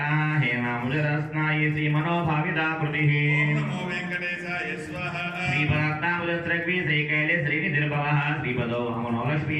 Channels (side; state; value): both; identical; correlation 1.00